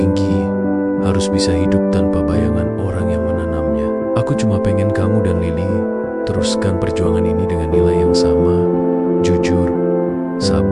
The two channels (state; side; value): identical; both; correlation 1.00